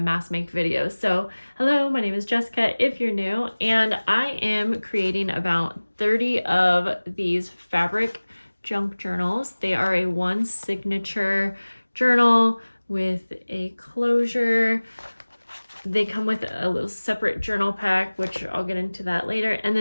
make videos. So hello, my name is Jessica if you're new, and I am creating about 30 of these fabric junk journals. They are a one signature journal with a closure. They come with a little separate journal pack, which I'll get into that later. And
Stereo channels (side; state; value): both; inverted; correlation -1.00